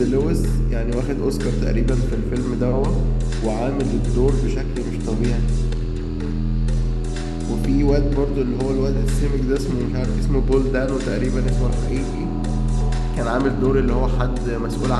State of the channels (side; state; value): both; identical; correlation 1.00